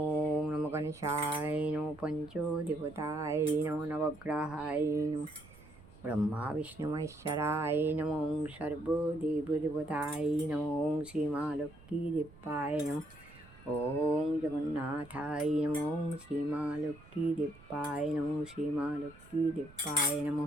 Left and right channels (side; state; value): right; noise; rumble, 22 dB below the sound